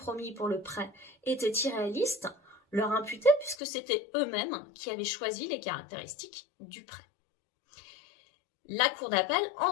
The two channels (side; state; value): right; drops out; at 3.6 s